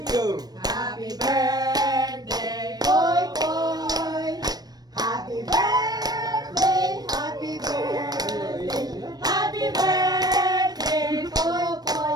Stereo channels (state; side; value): late; left; 0.19 ms